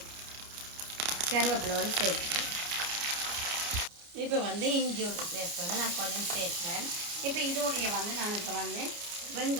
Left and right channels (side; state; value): left; late; 29 ms